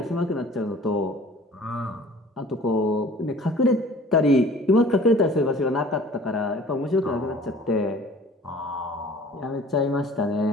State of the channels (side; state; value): both; normal; correlation 0.48